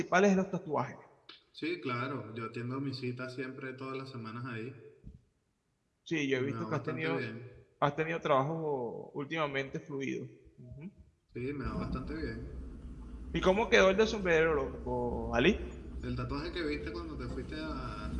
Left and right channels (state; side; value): identical; both; correlation 1.00